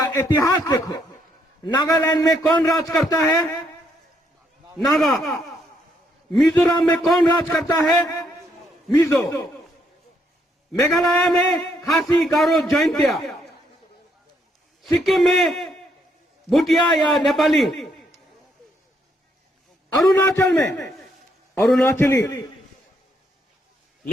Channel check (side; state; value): both; normal; correlation 0.73